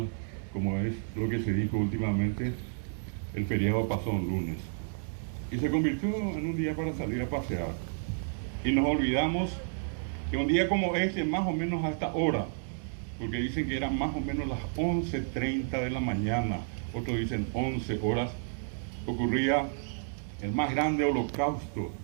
como es lo que se dijo últimamente, el feriado pasó un lunes. Y se convirtió en un día para salir a pasear. Y nos olvidamos que un día como este, más o menos a esta hora, porque dicen que eran más o menos las 11:30 de la mañana, otros dicen 11 horas, ocurría el más grande holocausto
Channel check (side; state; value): left; silent; digital silence